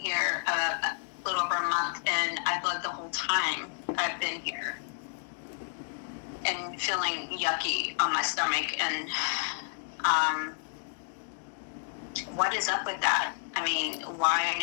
a little over a month, and I bled the whole time I've been here. And feeling yucky on my stomach. And what is up with that? I mean, why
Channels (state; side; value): silent; right; digital silence